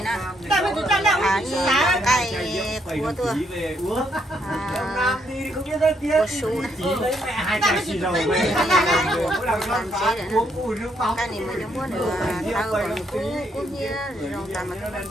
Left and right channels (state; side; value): normal; both; correlation 0.74